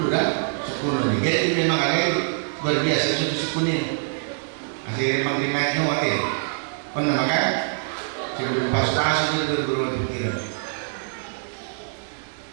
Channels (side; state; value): left; silent; digital silence